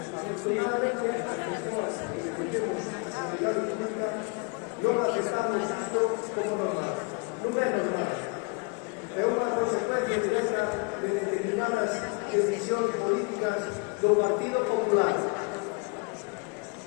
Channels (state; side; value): quieter; right; 32.3 dB